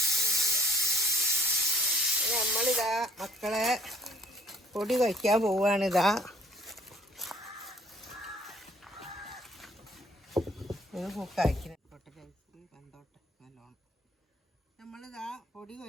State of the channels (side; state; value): both; normal; correlation 0.58